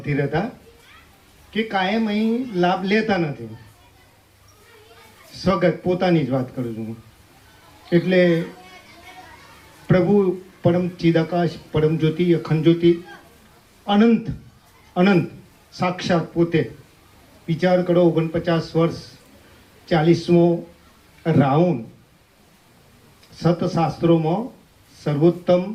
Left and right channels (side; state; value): both; identical; correlation 1.00